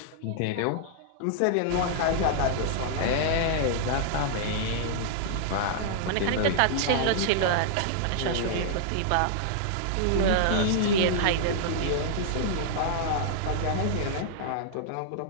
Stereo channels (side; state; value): both; different; correlation -0.01